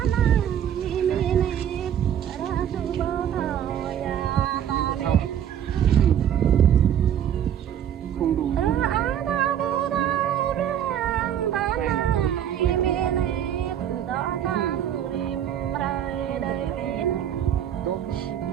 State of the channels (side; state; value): left; quieter; 9.8 dB